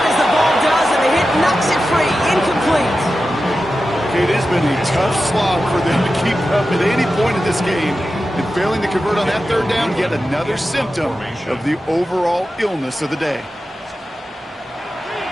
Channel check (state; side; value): normal; both; correlation 0.92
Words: as the ball does, and the hit knocks it free. Incomplete. It has been a tough slog for them to keep up at any point in this game. And failing to convert on that third down, yet another symptom of the overall illness of the day.